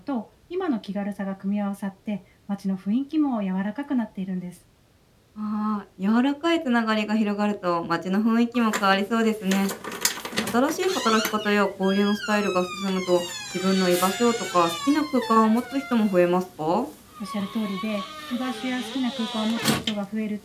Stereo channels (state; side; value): identical; both; correlation 1.00